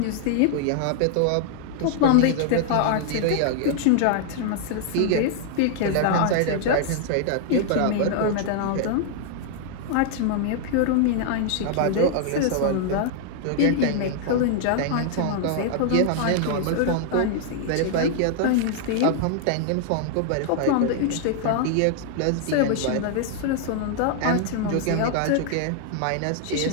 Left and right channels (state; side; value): different; both; correlation -0.01